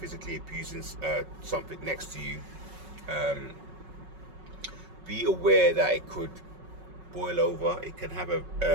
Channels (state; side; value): late; left; 5.4 ms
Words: abusing something next to you. Be aware that it could boil over. It can have a